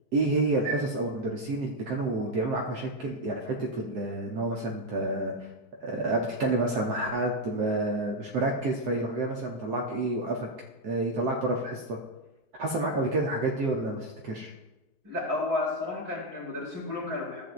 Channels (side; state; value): left; late; 4.6 ms